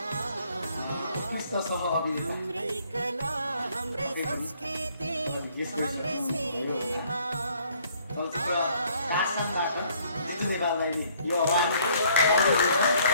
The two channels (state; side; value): inverted; both; correlation -0.63